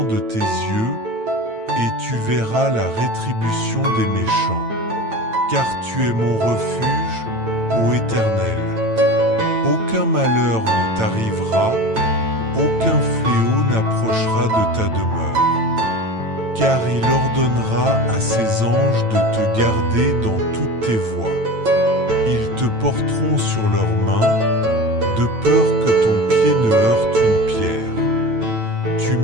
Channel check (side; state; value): left; late; 9.0 ms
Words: de tes yeux, et tu verras la rétribution des méchants. Car tu es mon refuge, ô Éternel. Aucun malheur ne t'arrivera, aucun fléau n'approchera de ta demeure. Car il ordonnera à ses anges de te garder dans toutes tes voies. Ils te porteront sur leurs mains, de peur que ton pied ne heurte une pierre. Tu